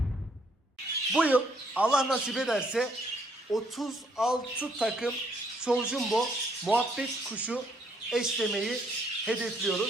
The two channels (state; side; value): normal; both; correlation 0.69